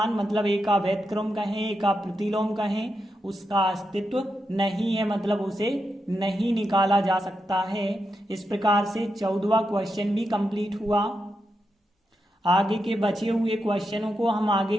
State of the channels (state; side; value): normal; both; correlation 0.86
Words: मतलब A का व्यतक्रम कहें, A का प्रतिलोम कहें, उसका अस्तित्व नहीं है, मतलब उसे नहीं निकाला जा सकता है। इस प्रकार से 14वां क्वेश्चन भी कंप्लीट हुआ। आगे के बचे हुए क्वेश्चनों को हम आगे